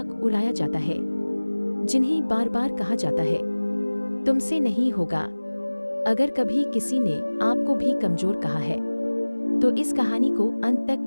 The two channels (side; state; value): both; inverted; correlation -1.00